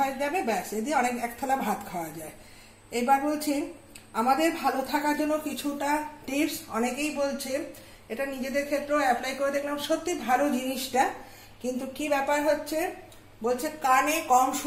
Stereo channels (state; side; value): identical; both; correlation 1.00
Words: যাবে, ব্যাস, এ দিয়ে অনেক এক থালা ভাত খাওয়া যায়। এবার বলছি আমাদের ভালো থাকার জন্য কিছুটা টিপস অনেকেই বলছে, এটা নিজেদের ক্ষেত্রেও অ্যাপ্লাই করে দেখলাম, সত্যি ভালো জিনিসটা। কিন্তু কি ব্যাপার হচ্ছে, বলছে কানে কম